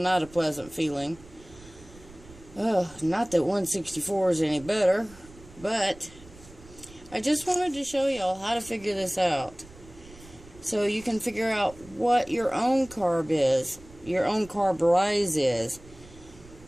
a pleasant feeling. Not that 164 is any better, but I just wanted to show y'all how to figure this out, so you can figure out what your own carb is, your own carb rise is.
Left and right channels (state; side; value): noise; right; rumble, 21 dB below the sound